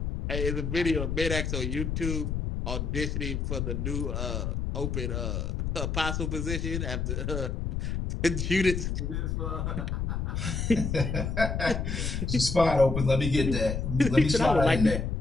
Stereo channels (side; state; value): left; noise; rumble, 1 dB below the sound